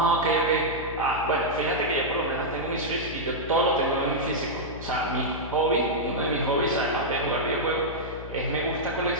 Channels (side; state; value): left; noise; hum, 11 dB below the sound